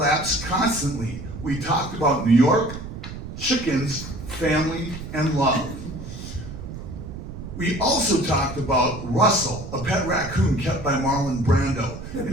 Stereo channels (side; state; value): right; noise; rumble, 10 dB below the sound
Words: constantly. We talked about New York, chickens, family, and love. We also talked about Russell, a pet raccoon kept by Marlon Brando,